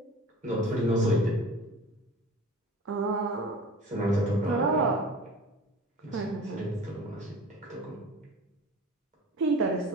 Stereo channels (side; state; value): both; normal; correlation 0.40